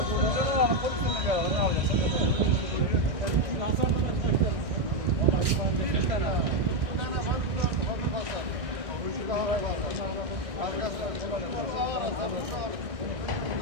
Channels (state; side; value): late; left; 1.6 ms